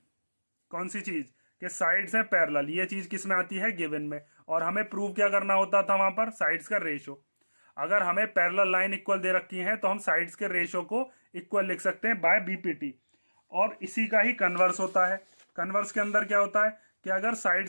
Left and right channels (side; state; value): both; inverted; correlation -1.00